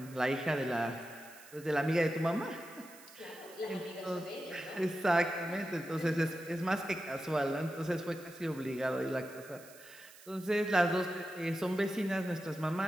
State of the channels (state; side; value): noise; right; hiss, 20 dB below the sound